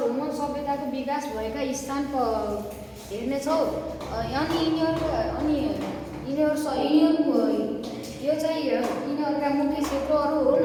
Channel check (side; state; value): both; identical; correlation 1.00